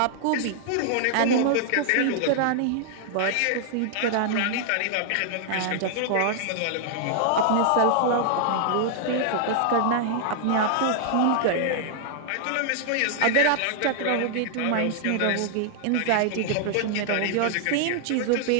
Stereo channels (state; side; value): different; both; correlation -0.01